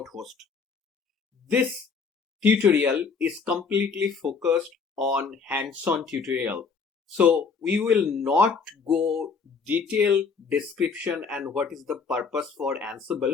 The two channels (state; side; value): quieter; right; 5.3 dB